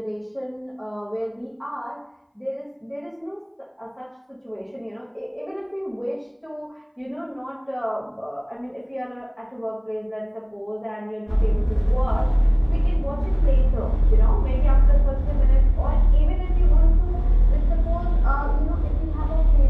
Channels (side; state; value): both; identical; correlation 1.00